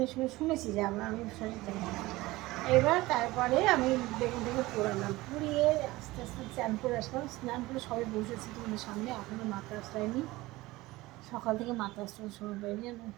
সময় শুনেছি যে আমি শরীর জানি না। এবার তারপরে আমি বেগুনটাকে পোড়ালাম, পুড়িয়ে আস্তে আস্তে স্নান করে আসলাম। স্নান করে সবাই বসেছি তোমাদের সামনে, এখনও মাথা আসলাইনি। সকাল থেকে মাথা আসতে সময় পাইনি,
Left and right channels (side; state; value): left; quieter; 19.5 dB